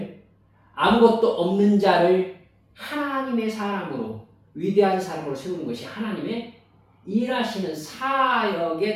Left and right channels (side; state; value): both; identical; correlation 1.00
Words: 아무것도 없는 자를 하나님의 사람으로, 위대한 사람으로 세우는 것이 하나님의 일하시는